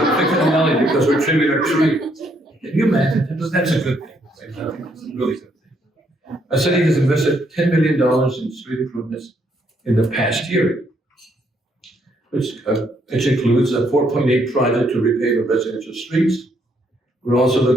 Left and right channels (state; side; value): normal; both; correlation 0.71